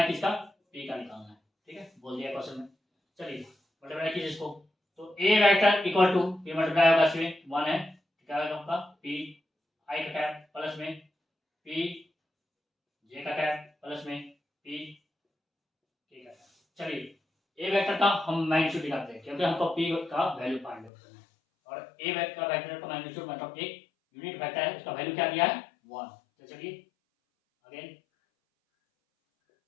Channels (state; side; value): drops out; right; at 20.9 s